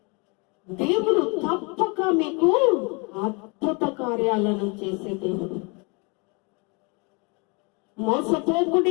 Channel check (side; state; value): right; quieter; 31.3 dB